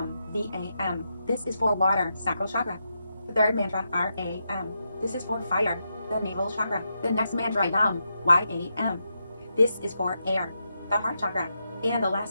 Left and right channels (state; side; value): inverted; both; correlation -0.85